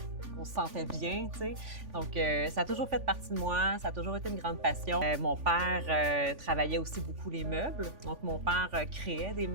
qu'on se sentait bien, tu sais. Donc, ça a toujours fait partie de moi, ça a toujours été une grande passion. Mon père travaillait aussi beaucoup les meubles. Donc, mon père créait des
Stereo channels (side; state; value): left; late; 3.5 ms